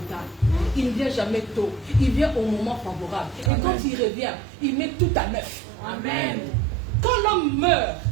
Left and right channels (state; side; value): drops out; left; at 3.5 s